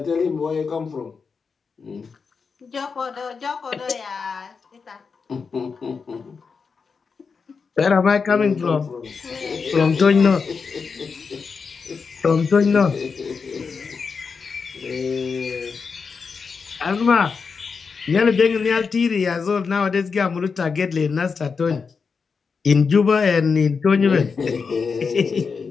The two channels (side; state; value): right; quieter; 5.3 dB